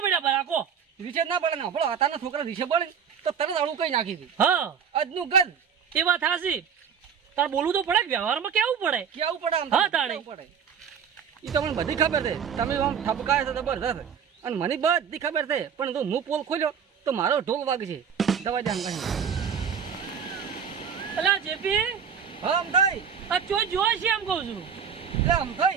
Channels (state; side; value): quieter; left; 7.4 dB